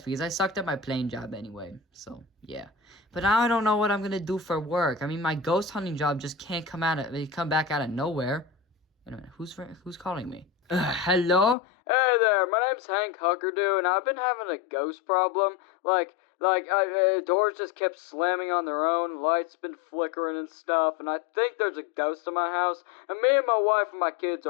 because I sucked at my plane job anyway. So, yeah. But now I don't know what I'm gonna do for work. I mean, my ghost hunting job just can't come back out of nowhere. Wait a minute, who's calling me? Hello? Hey there, my name's Hank Huckerdoo, and I've been having a ghost problem. Doors just kept slamming on their own, lights been flickering and stuff, and I think there's a ghost in my house, and me and my wife and my kids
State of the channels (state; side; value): drops out; right; at 11.6 s